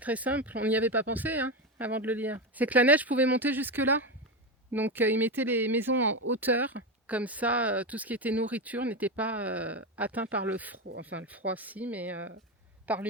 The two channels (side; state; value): both; normal; correlation 0.14